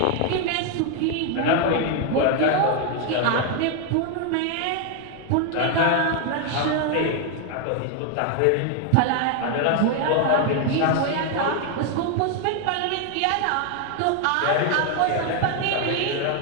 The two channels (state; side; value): different; both; correlation 0.01